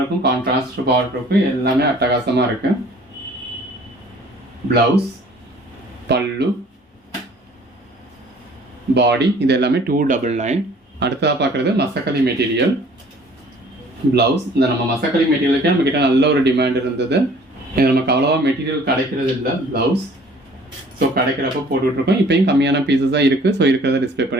கான்ட்ராஸ்ட் பார்டருக்கும் எல்லாமே அட்டகாசமாக இருக்கு. ப்ளவுஸ், பல்லு, பாடி. இது எல்லாமே 299. அடுத்ததாக பார்க்குறது மசக்கலி மெட்டீரியல் ப்ளவுஸ். இந்த நம்ம மசக்கலி மெட்டீரியலுக்கே நம்மக்கிட்ட நல்ல ஒரு டிமாண்ட் இருந்தது. இது நமக்கு அவ்வளோவா மெட்டீரியல் கிடைக்கிறது இல்லை ப்ளவுஸ். ஸோ கிடைக்கிறப்ப போட்டுட்ருக்கோம். இப்போயும் கம்மியான பீசஸ் தான் இருக்குது. ஸோ இருக்கிறத டிஸ்பிளே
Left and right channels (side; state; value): both; normal; correlation 0.53